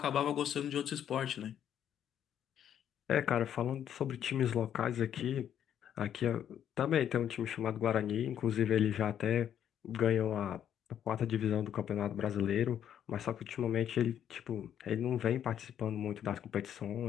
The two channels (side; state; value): right; quieter; 9.7 dB